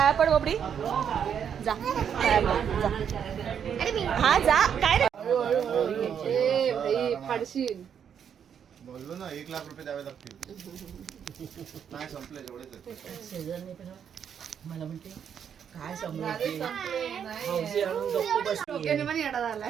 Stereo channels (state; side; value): quieter; left; 8.1 dB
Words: पड बबडी जा पाया पड, जा. अरे मी हा जा काय रे फाडशील. बोललो ना 1 लाख रुपये द्यावे लागतील. नाही संपले जेवढेच मला म्हणते काय समजते हौशी आणून गप्प बसली. डोक्याने पण येडा